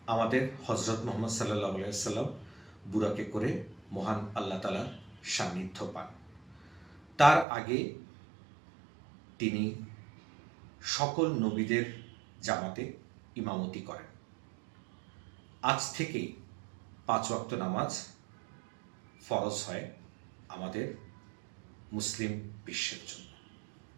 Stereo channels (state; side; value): drops out; left; at 7.5 s